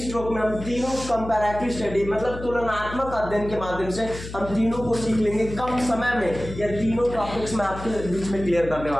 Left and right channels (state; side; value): noise; left; hum, 11 dB below the sound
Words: में हम तीनों comparative study मतलब तुलनात्मक अध्ययन के माध्यम से हम तीनों को सीख लेंगे कम समय में। यह तीनों टॉपिक्स मैं आपके बीच में क्लियर करने